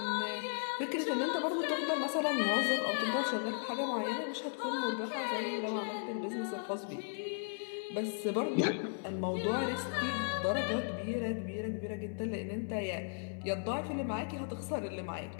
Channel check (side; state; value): right; silent; digital silence